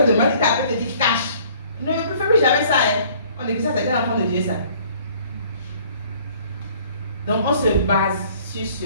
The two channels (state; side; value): inverted; both; correlation -0.56